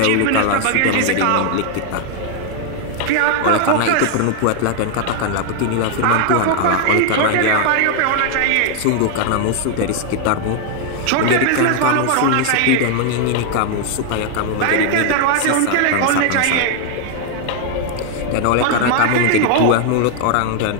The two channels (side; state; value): both; different; correlation 0.00